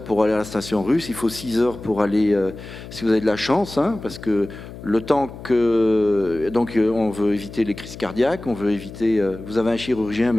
pour aller à la station russe, il faut 6 heures pour aller, si vous avez de la chance, hein, parce que le temps que... Donc on veut éviter les crises cardiaques, on veut éviter... vous avez un chirurgien,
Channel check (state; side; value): noise; left; hum, 14 dB below the sound